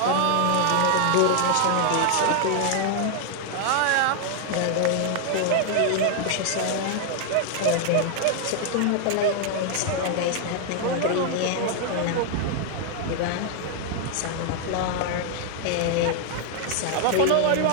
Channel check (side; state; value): both; different; correlation 0.00